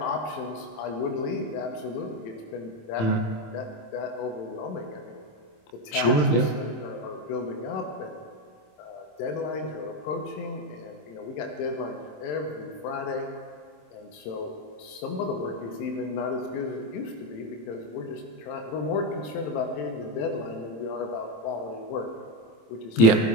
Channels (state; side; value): late; right; 27 ms